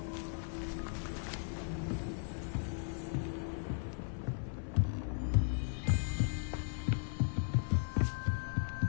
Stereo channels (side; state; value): right; silent; 53 dB below the other